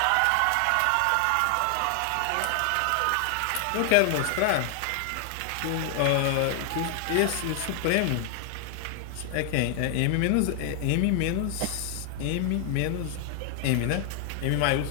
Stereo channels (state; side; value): different; both; correlation 0.00